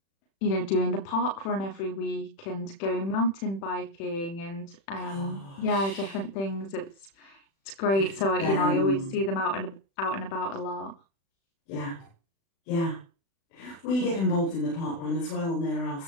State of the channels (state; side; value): late; right; 36 ms